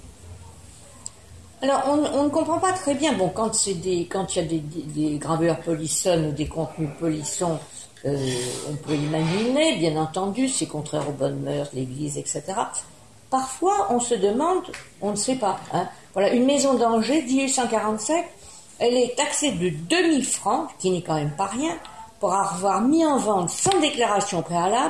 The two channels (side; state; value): both; identical; correlation 1.00